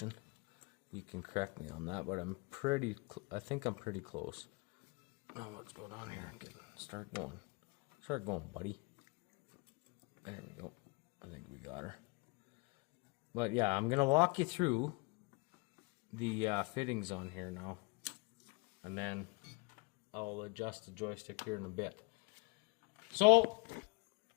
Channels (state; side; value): quieter; right; 27.7 dB